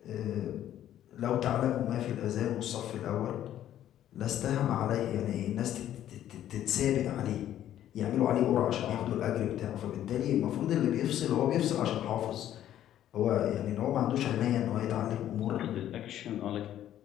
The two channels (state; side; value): quieter; right; 11.7 dB